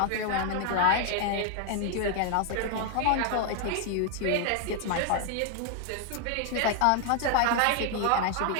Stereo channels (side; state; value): both; different; correlation 0.00